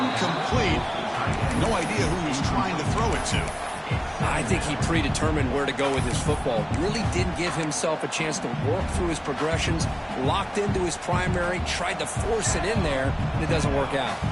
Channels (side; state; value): both; identical; correlation 1.00